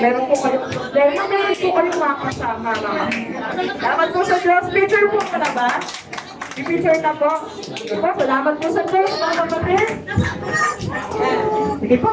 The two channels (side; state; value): both; identical; correlation 1.00